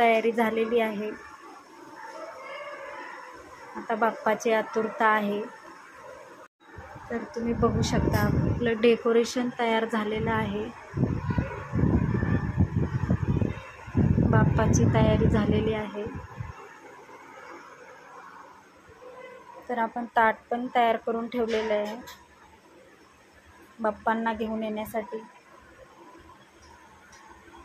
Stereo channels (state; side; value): identical; both; correlation 1.00